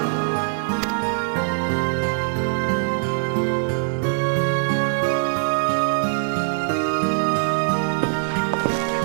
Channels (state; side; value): silent; left; 59 dB below the other